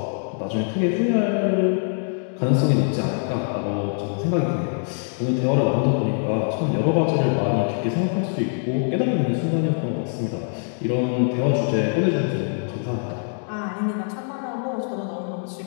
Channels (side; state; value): right; silent; 61 dB below the other